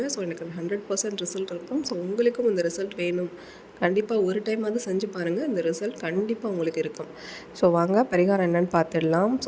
ஸோ எனக்கு 100% ரிசல்ட் இருக்கும். ஸோ உங்களுக்கும் இந்த ரிசல்ட் வேணும், கண்டிப்பாக ஒரு டைமாவது செஞ்சு பாருங்கள். இந்த ரிசல்ட் கண்டிப்பாக உங்களுக்கு இருக்கும். ஸோ வாங்க பரிகாரம் என்னென்னு பார்த்துடலாம்.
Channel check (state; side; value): identical; both; correlation 1.00